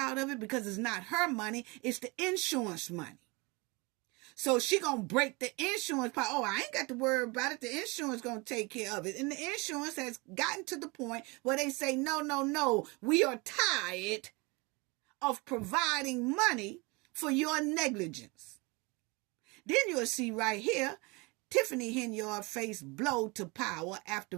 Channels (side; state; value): left; quieter; 26.9 dB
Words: of it? Because it's not her money. It's the insurance money. So she gonna break the insurance part. Oh, I ain't got to worry about it. The insurance gonna take care of it. And the insurance has gotten to the point where they say, no. We are tired of providing money for your negligence. Then you'll see right here, Tiffany Henyard faced blow to power after